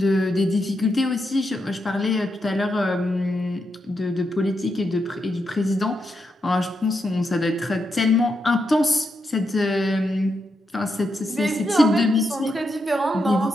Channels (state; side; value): normal; both; correlation 0.83